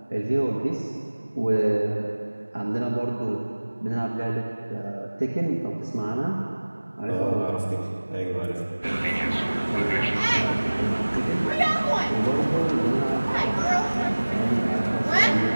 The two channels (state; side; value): inverted; both; correlation -1.00